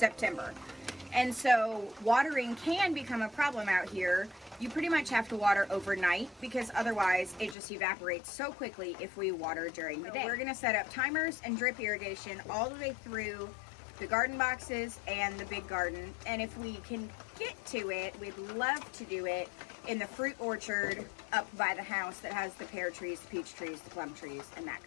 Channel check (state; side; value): drops out; right; at 7.6 s